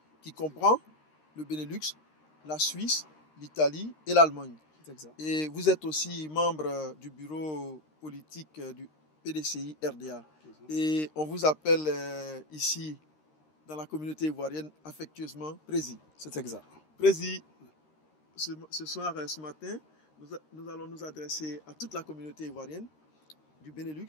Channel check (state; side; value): late; right; 13 ms